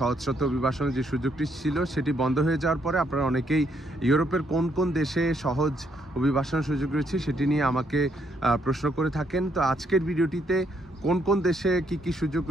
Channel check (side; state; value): both; normal; correlation 0.73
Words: অভিবাসনের যে সুযোগটি ছিল সেটি বন্ধ হয়ে যাওয়ার পরে আপনারা অনেকেই ইউরোপের কোন কোন দেশে সহজ অভিবাসনের সুযোগ রয়েছে সেটি নিয়ে আমাকে প্রশ্ন করে থাকেন। তো আজকের ভিডিওটিতে কোন কোন দেশে কি কি সুযোগ